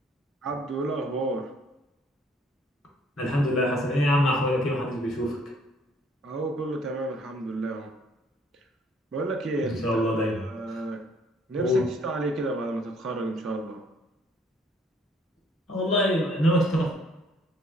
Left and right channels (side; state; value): both; normal; correlation 0.62